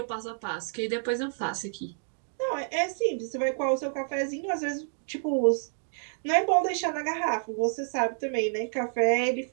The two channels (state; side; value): silent; left; digital silence